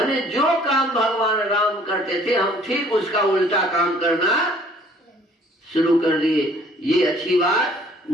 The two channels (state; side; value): normal; both; correlation 0.57